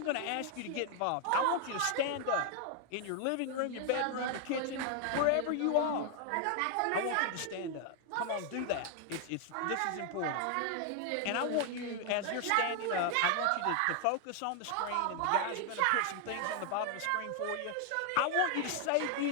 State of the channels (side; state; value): both; different; correlation 0.00